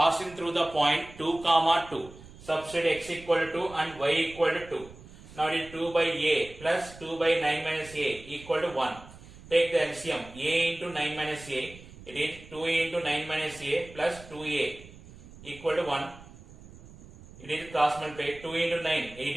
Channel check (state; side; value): noise; right; rumble, 19 dB below the sound